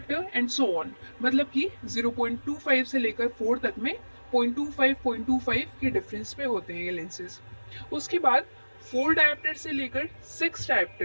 एंड सो ऑन। मतलब कि 0.25 से लेकर 4 तक में 0.25 के डिफरेंस पे होते हैं ये लेंसेज। उसके बाद 4 डायोप्टर से लेकर 6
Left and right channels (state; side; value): inverted; both; correlation -1.00